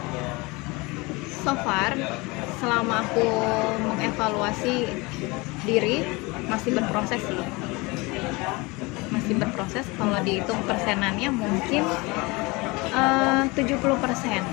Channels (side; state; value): right; quieter; 24.9 dB